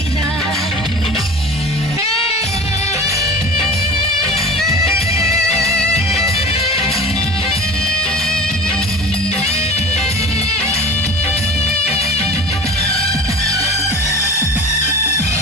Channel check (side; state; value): both; normal; correlation 0.37